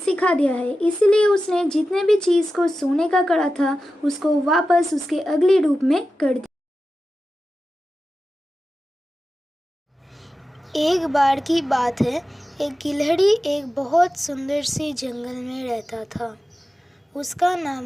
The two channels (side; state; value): both; normal; correlation 0.93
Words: दिया है, इसलिए उसने जितने भी चीज को सोने का करा था उसको वापस उसके अगले रूप में कर दिया। एक बार की बात है, एक गिलहरी एक बहुत सुंदर सी जंगल में रहता था। उसका